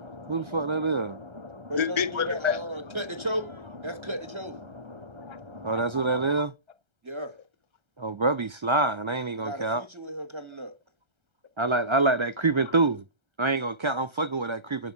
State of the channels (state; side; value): late; left; 1.3 ms